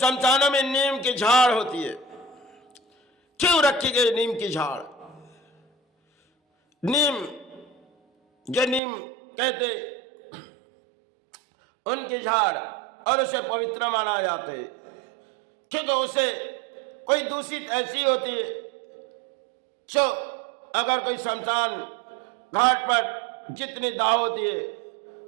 में नीम की झाड़ होती है, क्यों रखी गई नीम की झाड़? नीम जो नीम कहते उनकी झाड़, और उसे पवित्र माना जाते क्योंकि उसे कोई दूषित ऐसी होती है जो अगर कोई शमशान घाट पर जितनी दाह होती है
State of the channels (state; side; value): drops out; left; at 8.8 s